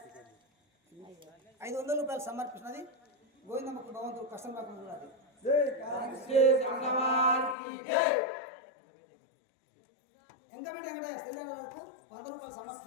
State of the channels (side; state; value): right; drops out; at 7.6 s